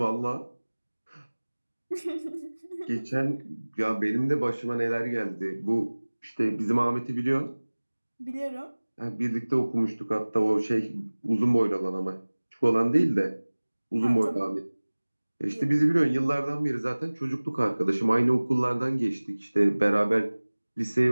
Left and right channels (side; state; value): both; inverted; correlation -1.00